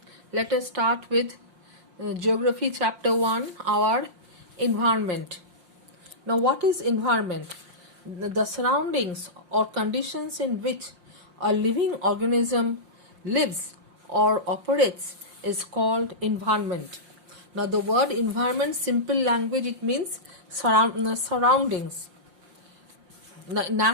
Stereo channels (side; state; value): left; late; 5.7 ms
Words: let us start with Geography Chapter 1, our environment. Now, what is environment? The surroundings or conditions in which a living organism lives or operates is called environment. Now, the word environment, simple language, it means surroundings.